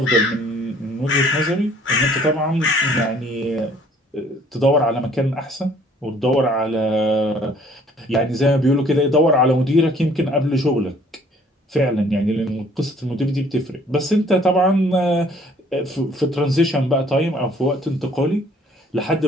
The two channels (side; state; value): both; normal; correlation 0.58